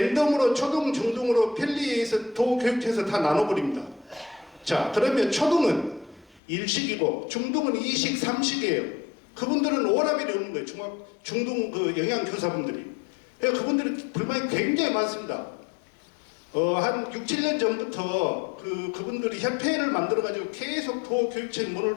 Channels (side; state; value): right; drops out; at 6.4 s